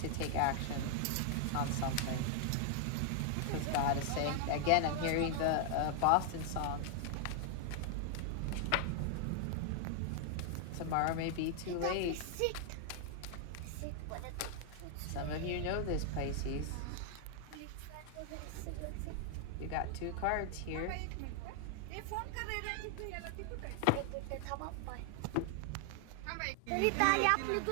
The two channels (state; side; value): different; both; correlation 0.00